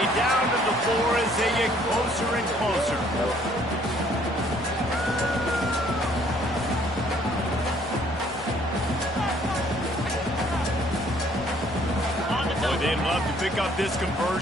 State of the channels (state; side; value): normal; both; correlation 0.62